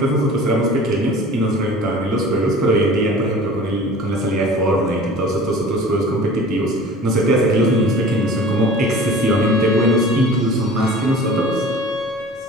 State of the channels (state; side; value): normal; both; correlation 0.42